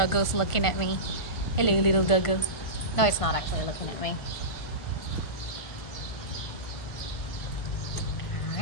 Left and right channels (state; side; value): late; right; 1.4 ms